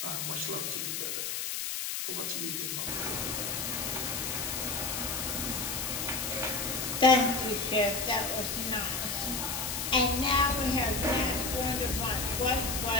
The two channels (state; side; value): noise; left; hiss, 2 dB below the sound